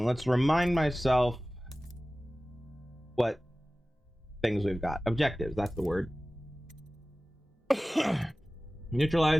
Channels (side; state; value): both; normal; correlation 0.97